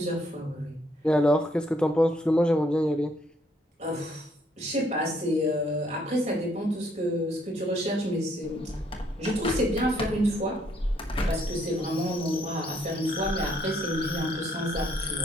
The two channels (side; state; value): both; normal; correlation 0.69